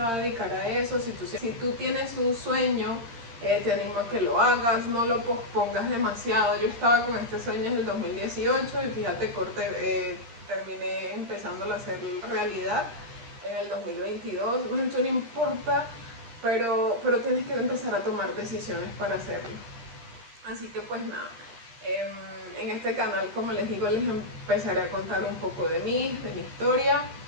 a dedicar a eso. Si tú tienes un sueño, te animo a que lo hagas, no lo pospongas demasiado. Yo estaba con este sueño en el 2018 y fíjate, terminé empezándolo a hacer realidad en el 2022. Mucho no importa, pero tienes que empezar a tomar decisiones para hacerlo. Así que pues nada, en este canal, como les digo, les empezaré a contar un poco de mí, de mi historia.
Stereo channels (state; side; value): late; left; 13 ms